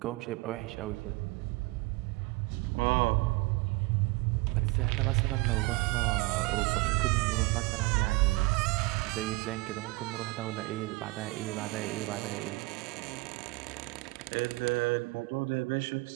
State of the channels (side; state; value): left; quieter; 23.3 dB